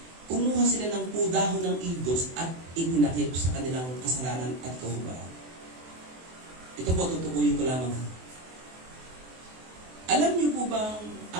kumuha sila ng dahon ng igos at itinakip sa kanilang kasalanan at kahubaran. Ito po, tutukuyin ko lamang. Alam niyo po bang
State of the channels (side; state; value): left; late; 24 ms